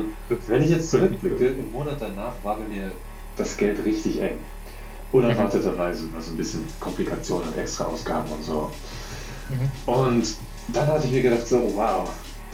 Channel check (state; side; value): identical; both; correlation 1.00